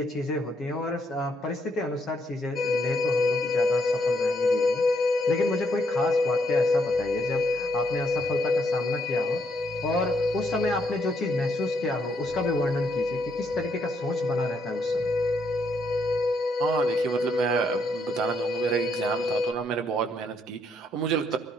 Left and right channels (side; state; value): both; normal; correlation 0.74